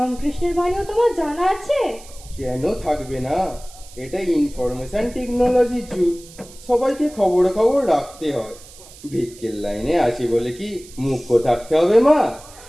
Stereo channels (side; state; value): right; noise; hiss, 20 dB below the sound